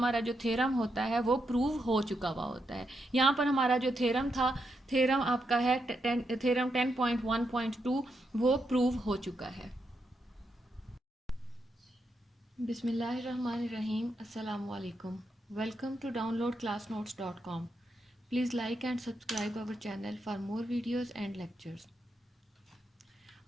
जो थ्योरम होता है वो प्रूव हो चुका हुआ होता है। यहाँ पर हमारा जो थ्योरम था, थ्योरम आपका है थ्योरम 10.1.2, वो प्रूव हो चुका है। Bismillahirrahmanirrahim. Assalamu alaikum. Welcome to downloadclassnotes.com. Please like and subscribe our channel for more videos and lectures.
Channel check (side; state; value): both; normal; correlation 0.82